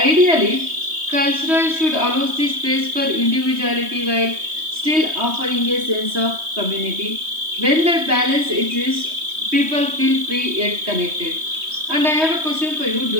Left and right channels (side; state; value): left; late; 3.2 ms